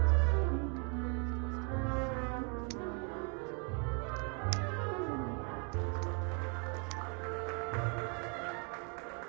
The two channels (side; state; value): left; quieter; 37.1 dB